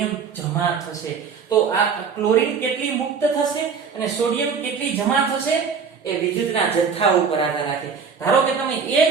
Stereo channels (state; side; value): quieter; left; 5.9 dB